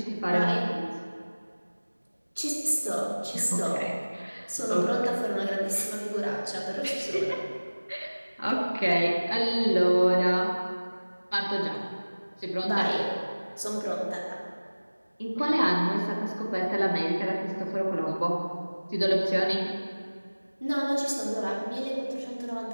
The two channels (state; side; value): inverted; both; correlation -1.00